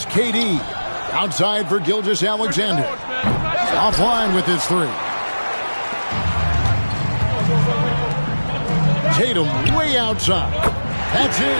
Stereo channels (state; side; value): inverted; both; correlation -1.00